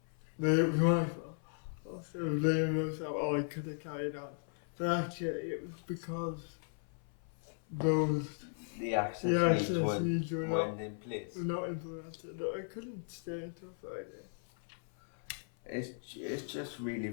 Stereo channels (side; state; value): right; silent; 53 dB below the other